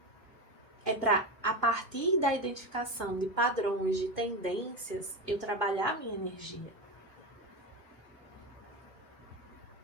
É para, a partir da identificação de padrões, de tendências, eu trabalhar a minha energia.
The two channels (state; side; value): normal; both; correlation 0.18